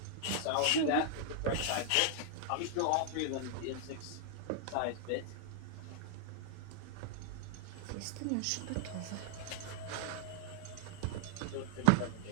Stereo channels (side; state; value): both; different; correlation 0.00